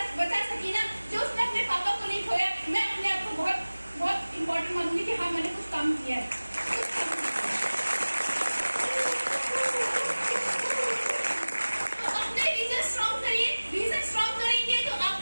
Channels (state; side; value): inverted; both; correlation -1.00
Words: बचा सकी ना, जो उसने अपने पापा को नहीं खोया, मैं अपने आप को बहुत इम्पोर्टेंट मानूंगी कि हाँ मैंने कुछ काम किया है। तो अपने रीजन स्ट्रॉन्ग करिए। रीजन स्ट्रॉन्ग करेंगे तो